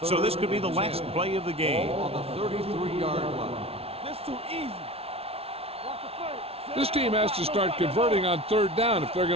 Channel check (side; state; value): left; late; 0.29 ms